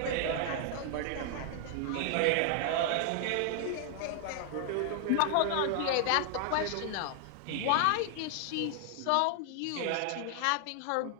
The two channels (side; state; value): both; different; correlation 0.00